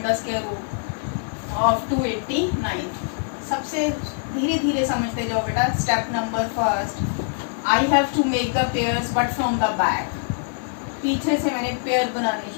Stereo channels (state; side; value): silent; right; digital silence